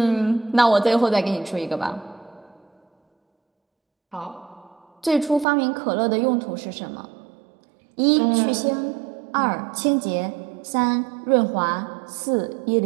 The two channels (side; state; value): left; drops out; at 5.5 s